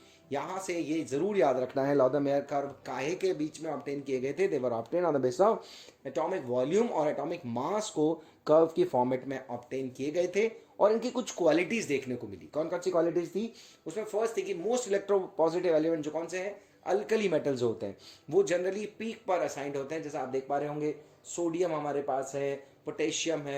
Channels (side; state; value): both; identical; correlation 1.00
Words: यहां से ये जरूर याद रखना है, लॉदा-मेयर कर्व काहे के बीच में ऑब्टेन किए गए थे? They were obtain on the basis of atomic volume और एटॉमिक मास को कर्व की फॉर्मेट में ऑब्टेन किए गए थे, और इनकी कुछ क्वालिटीज देखने को मिली। कौन कौन सी क्वालिटीज थी? उसमें फर्स्ट थी कि मोस्ट इलेक्ट्रोपॉजिटिव एलिमेंट जो कौन से हैं, अल्कली मेटल्स होते हैं, वो जनरली पीक पर असाइंड होते हैं। जैसा आप देख पा रहे होंगे, सोडियम हमारे पास है, पोटेशियम